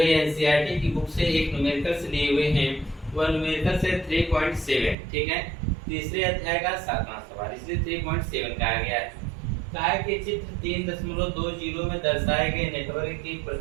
एनसीईआरटी की बुक से एक न्यूमेरिकल से लिए हुए हैं, वह न्यूमेरिकल से 3.7। ठीक है, तीसरे अध्याय का 7वां सवाल, इसलिए 3.7 कहा गया है। कहा है कि चित्र 3.20 में दर्शाए गए नेटवर्क की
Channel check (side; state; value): left; drops out; at 5.0 s